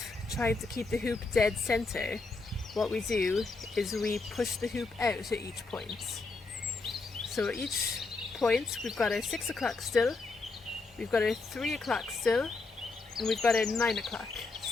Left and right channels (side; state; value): right; quieter; 3.8 dB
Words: trying to keep the hoop dead center, what we do is we push the hoop out at each point. So at each point we've got our 6 o'clock still, we've got our 3 o'clock still, and we've got our 9 o'clock